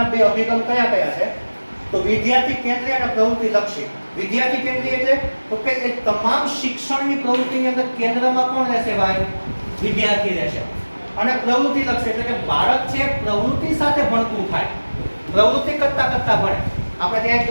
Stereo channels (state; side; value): inverted; both; correlation -1.00